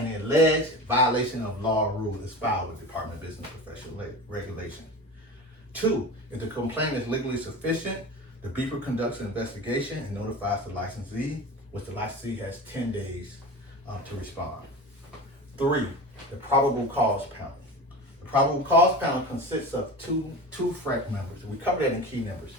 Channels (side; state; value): both; normal; correlation 0.30